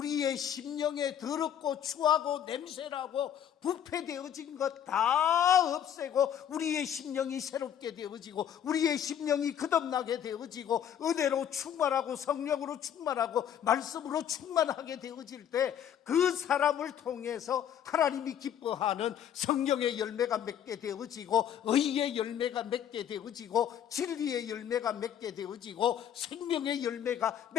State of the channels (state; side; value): quieter; right; 9.5 dB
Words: 심령에 더럽고 추하고 냄새나고 부패되어진 것 다 없애고 우리의 심령이 새롭게 되어지고 우리의 심령이 거듭나게 되어지고 은혜로 충만하고 성령으로 충만하고 말씀으로 충만하게 되어질 때 그 사람을 통해서 하나님이 기뻐하는 성령의 열매가 맺게 되어지고 의의 열매가 맺게 되어지고 진리의 열매가 맺게 되어지고 생명의 열매가